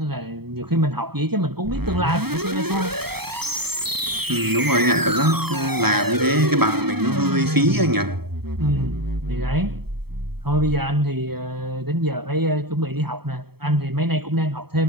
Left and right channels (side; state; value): left; late; 0.96 ms